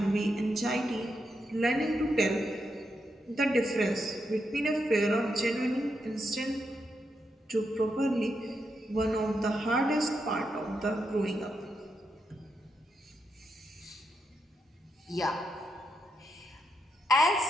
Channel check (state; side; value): normal; both; correlation 0.83